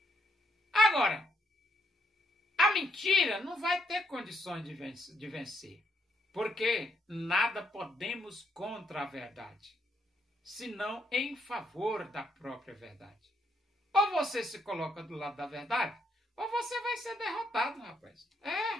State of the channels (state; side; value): normal; both; correlation 0.74